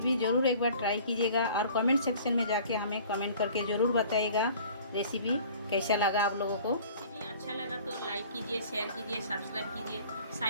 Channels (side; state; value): both; inverted; correlation -0.48